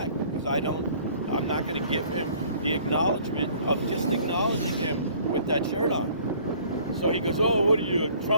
because I'm not going to give him the acknowledgement of just acknowledging him with that shirt on. So he goes, "Oh, what are you, a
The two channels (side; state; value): both; inverted; correlation -0.55